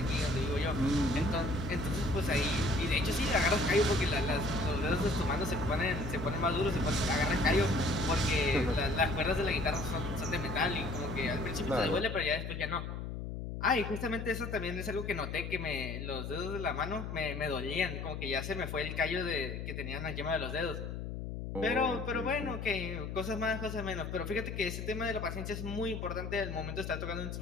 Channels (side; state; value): left; noise; hum, 6 dB below the sound